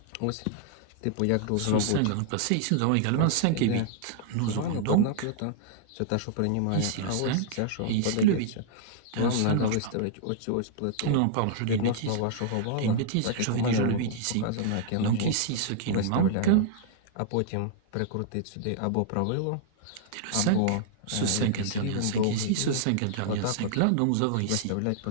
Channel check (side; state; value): both; different; correlation -0.01